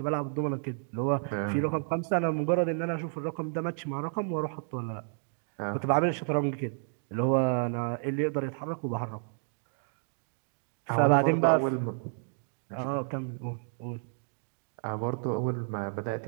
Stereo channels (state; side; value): silent; left; digital silence